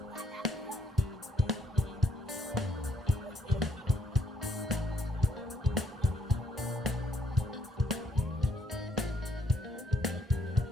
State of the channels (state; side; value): normal; both; correlation 0.68